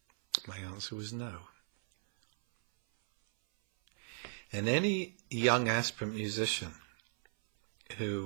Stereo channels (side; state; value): left; silent; 54 dB below the other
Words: My answer was no. And any young aspirant musician